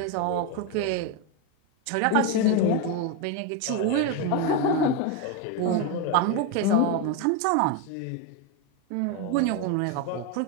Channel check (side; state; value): both; different; correlation 0.03